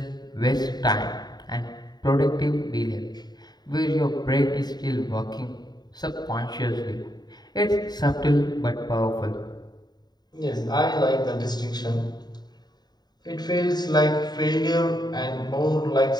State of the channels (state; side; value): late; right; 0.20 ms